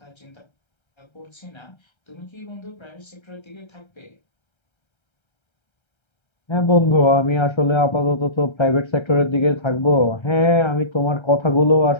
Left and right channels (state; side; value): late; right; 1.3 ms